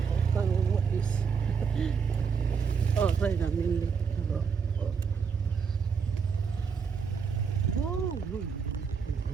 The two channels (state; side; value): quieter; left; 6.0 dB